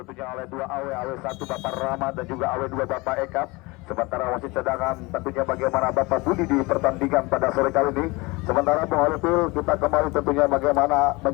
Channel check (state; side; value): quieter; right; 24.2 dB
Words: oleh 2 AW, AW1 Bapak Rama dan juga AW2 Bapak Eka. Sementara wasit cadangan tentunya bagaimana Bapak Budi di pertandingan pada sore kali ini. Sementara Bung Holipil, kita kembali tentunya bagaimana